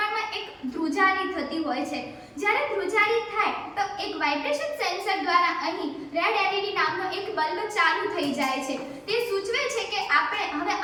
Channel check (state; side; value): identical; both; correlation 1.00